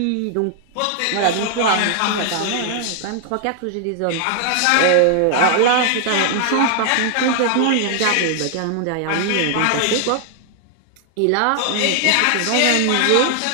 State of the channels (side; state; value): both; different; correlation -0.01